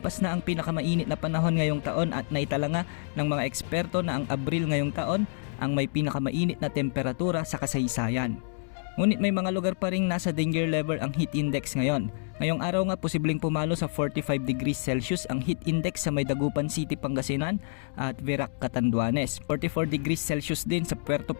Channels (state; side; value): silent; right; digital silence